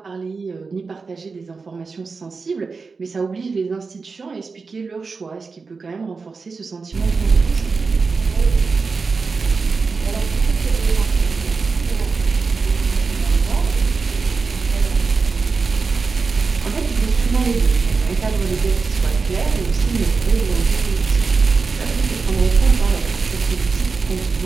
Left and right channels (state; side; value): quieter; left; 4.6 dB